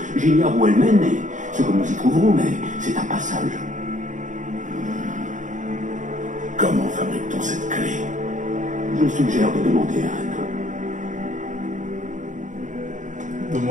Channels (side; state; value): left; late; 0.36 ms